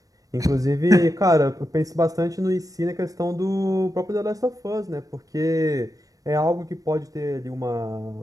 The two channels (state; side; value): late; left; 0.17 ms